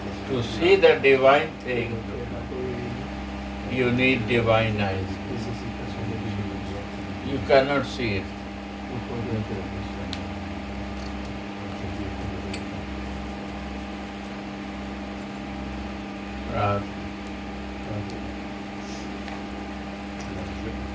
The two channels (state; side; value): identical; both; correlation 1.00